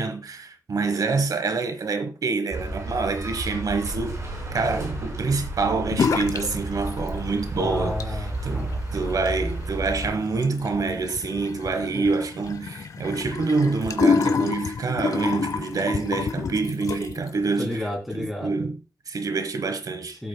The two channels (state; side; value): normal; both; correlation 0.70